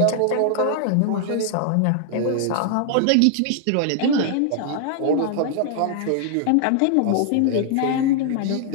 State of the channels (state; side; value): different; both; correlation 0.00